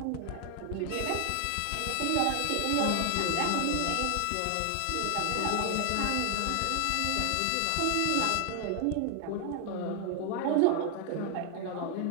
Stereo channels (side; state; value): both; different; correlation 0.00